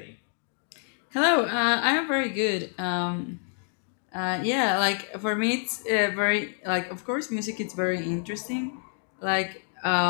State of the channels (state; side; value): silent; right; 57 dB below the other